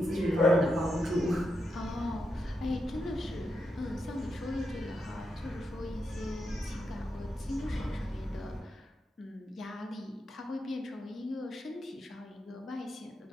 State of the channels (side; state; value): both; normal; correlation 0.85